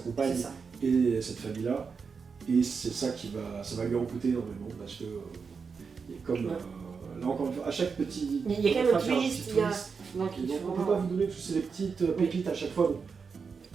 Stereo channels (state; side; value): quieter; left; 5.5 dB